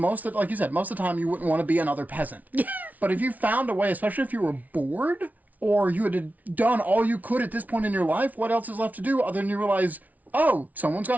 you said, most of the time you wouldn't want to be another peasant. But if you found a way, especially if you were bored or you had done all you could at this point in your life, what else is left to do other than you realize, oh, someone's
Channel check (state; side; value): late; left; 0.074 ms